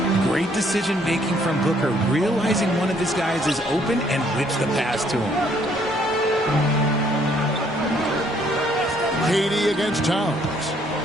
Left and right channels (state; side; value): normal; both; correlation 0.65